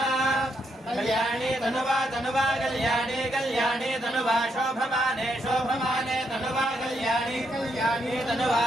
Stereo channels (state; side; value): normal; both; correlation 0.78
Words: कल्याणी तनुवा तनुवा कल्याणी कल्याणी तनुवा शोभमाने शोभमाने तनुवा कल्याणी कल्याणी तनुवा